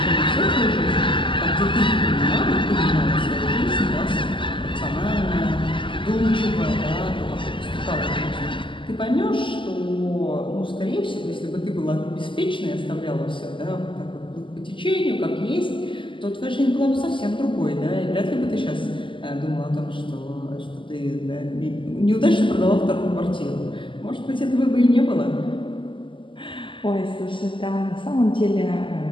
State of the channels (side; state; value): right; late; 0.25 ms